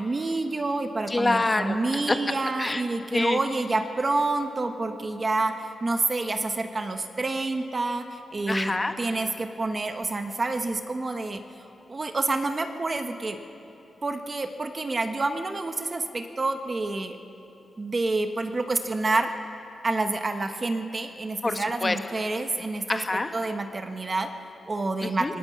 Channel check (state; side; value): normal; both; correlation 0.94